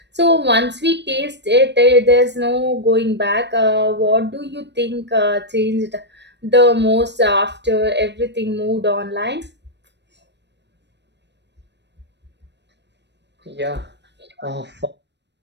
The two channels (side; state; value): left; late; 0.50 ms